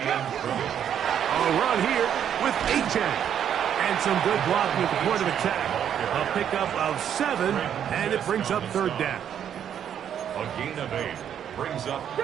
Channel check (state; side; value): quieter; left; 9.2 dB